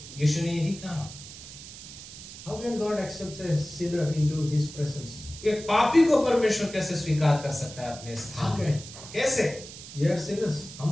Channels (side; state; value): right; noise; hiss, 14 dB below the sound